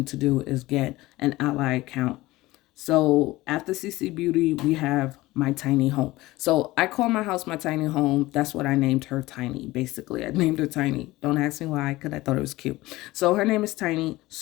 to do, is get an Ally account. So after CC Beauty, we have my tiny home. So I call my house my tiny home. That's what I named her, Tiny. Basically, I named her Tiny. Don't ask me why, because I thought it was cute. So her name is Tiny.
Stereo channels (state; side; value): quieter; right; 18.8 dB